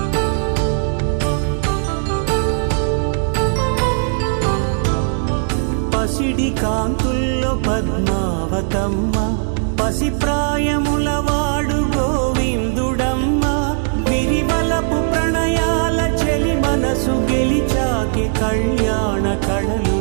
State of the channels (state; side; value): silent; left; digital silence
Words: పసిడి కాంతుల్లో పద్మావతమ్మ, పసిప్రాయముల వాడు గోవిందుడమ్మ. విరివలపు ప్రణయాల చెలి మనసు గెలిచాకె కళ్యాణ